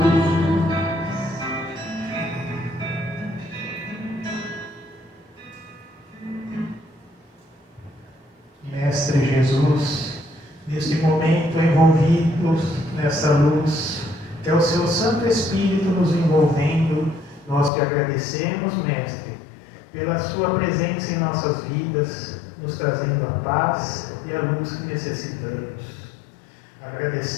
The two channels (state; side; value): drops out; right; at 17.7 s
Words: Mestre Jesus, neste momento envolvidos nessa luz, que é o seu Santo Espírito nos envolvendo, nós te agradecemos, Mestre, pela sua presença em nossas vidas, nos trazendo a paz e a luz que necessitamos.